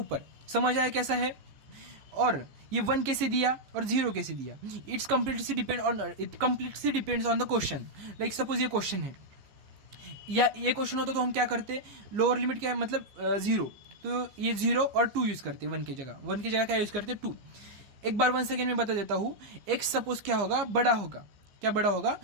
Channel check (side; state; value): left; late; 15 ms